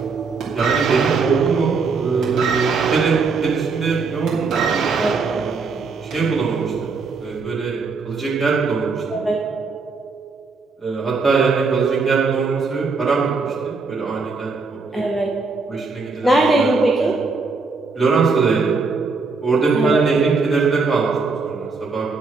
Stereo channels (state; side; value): quieter; left; 4.4 dB